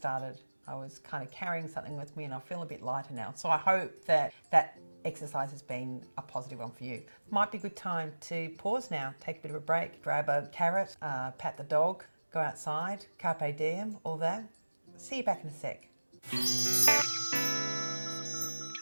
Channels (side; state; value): both; inverted; correlation -1.00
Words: I was kind of carrying something with me and I feel a bit lighter now. So I hope that that exercise has been a positive one for you. Might be a good time to pause now, take a bit of a break, grab a carrot, pat the dog, go outside, carpe diem, all that. See you back in a sec.